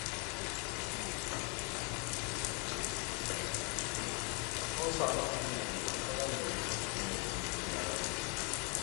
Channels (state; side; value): quieter; right; 28.7 dB